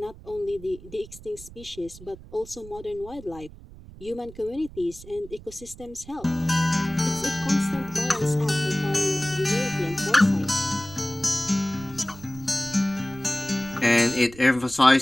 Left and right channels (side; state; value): right; noise; rumble, 18 dB below the sound